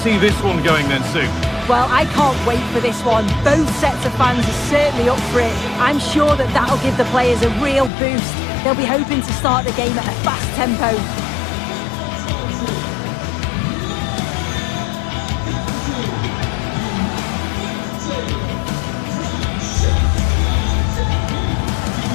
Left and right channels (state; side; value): drops out; right; at 7.9 s